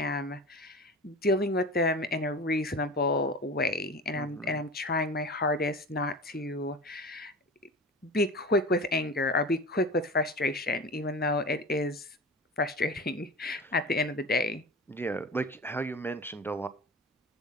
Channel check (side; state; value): both; normal; correlation 0.32